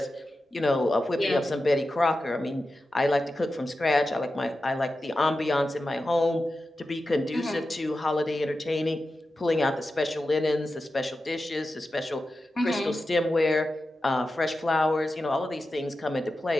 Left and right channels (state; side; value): normal; both; correlation 0.92